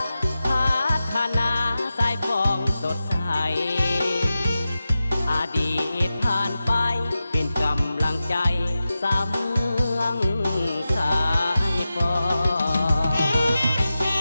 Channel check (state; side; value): inverted; both; correlation -0.93